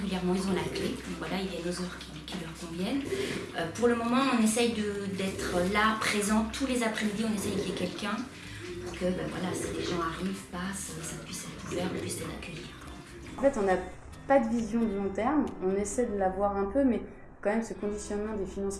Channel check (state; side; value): identical; both; correlation 1.00